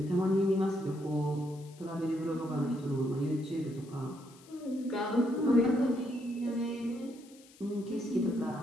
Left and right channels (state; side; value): noise; left; hiss, 25 dB below the sound